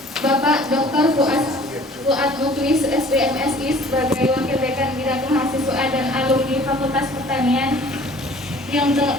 Bapak Dr. Fuad Muklis SBMSI sebagai Wakil Dekan Bidang Mahasiswa dan Alumni Fakultas Pertanian.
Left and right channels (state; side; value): normal; both; correlation 0.51